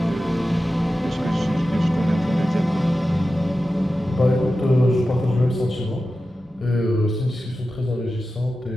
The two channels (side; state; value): both; normal; correlation 0.93